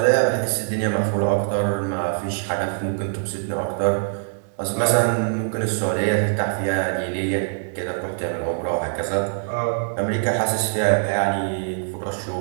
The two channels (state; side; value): silent; left; 63 dB below the other